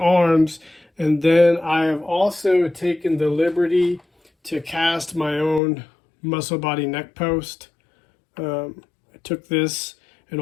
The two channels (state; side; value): drops out; right; at 5.6 s